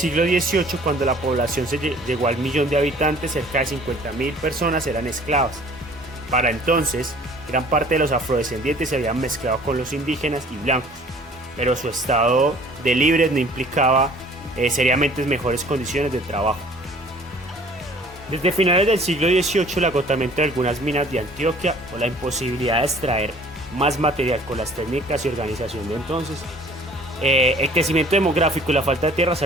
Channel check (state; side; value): normal; both; correlation 0.52